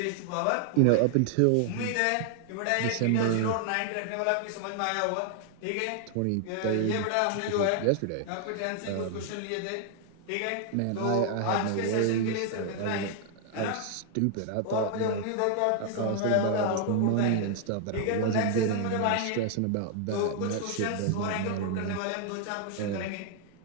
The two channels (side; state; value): both; different; correlation 0.00